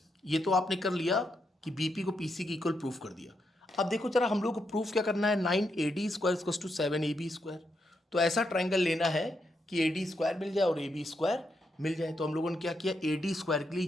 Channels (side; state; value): both; normal; correlation 0.81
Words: ये तो आपने कर लिया कि बीपी को पीसी की इक्वल प्रूफ कर दिया। अब देखो जरा, हम लोग को प्रूफ क्या करना है, 9AD square equals to 7AB square. तो ऐसा ट्राइंगल लेना है कि AD स्क्वायर मिल जाए और AB स्क्वायर मिल जाए। तो हम लोगों ने क्या किया, AD स्क्वायर के लिए